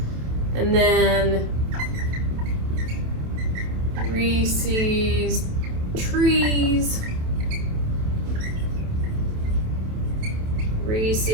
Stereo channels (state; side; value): late; left; 27 ms